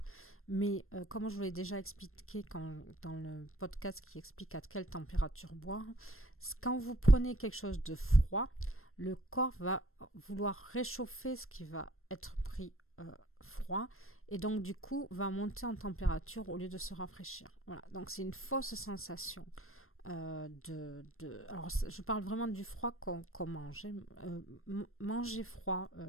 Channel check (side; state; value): right; late; 0.62 ms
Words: mais comme je vous l'ai déjà expliqué dans le podcast qui explique à quelle température boire, quand vous prenez quelque chose de froid, le corps va vouloir réchauffer ce qui va être pris froid, et donc du coup va monter en température au lieu de se rafraîchir. Voilà, donc c'est une fausse sensation. Alors je parle vraiment du froid qu'on mange. Manger froid,